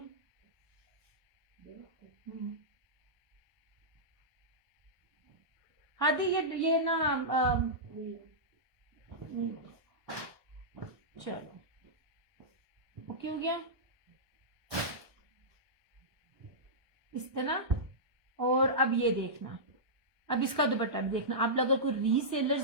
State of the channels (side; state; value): left; late; 1.2 ms